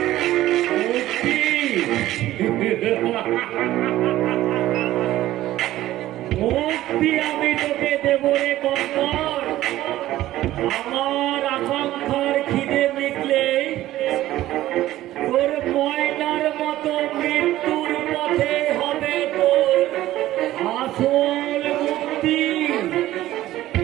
মুক্তি আমি তোকে দেব রে কঙ্কর। আমার আকাঙ্ক্ষার খিদে মিটলে তোর ময়নার মতো মৃত্যুর পথে হবে তোর আসল মুক্তি।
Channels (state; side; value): quieter; left; 14.9 dB